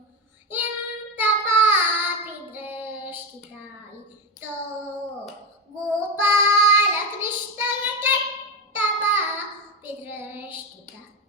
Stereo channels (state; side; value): normal; both; correlation 0.14